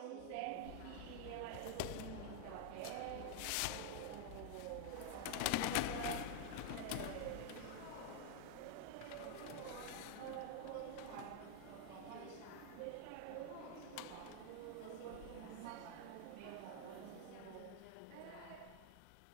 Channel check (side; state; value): both; different; correlation 0.00